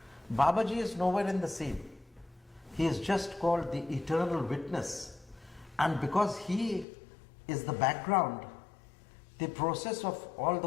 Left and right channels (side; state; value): right; drops out; at 6.9 s